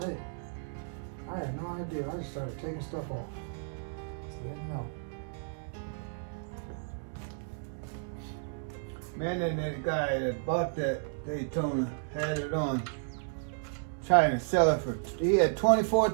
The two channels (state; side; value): silent; left; digital silence